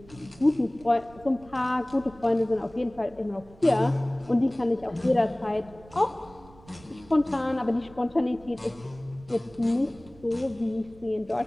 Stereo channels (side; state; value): right; noise; rumble, 23 dB below the sound